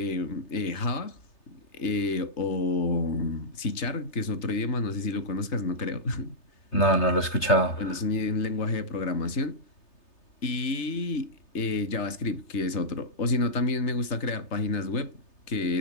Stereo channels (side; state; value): right; late; 3.3 ms